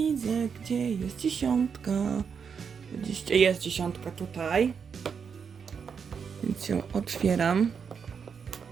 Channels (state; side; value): quieter; left; 6.5 dB